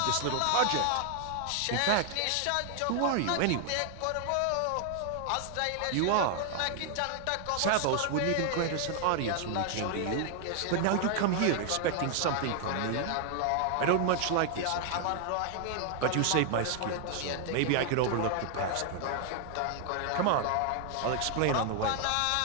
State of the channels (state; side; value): different; both; correlation 0.00